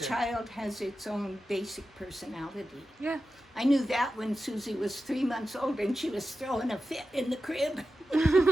child has its own basic personality. Yeah. I knew that when Susie was 3 months old and she was throwing a fit in the crib.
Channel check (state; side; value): normal; both; correlation 0.92